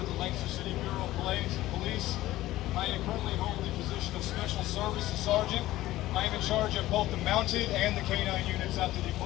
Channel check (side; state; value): right; quieter; 16.0 dB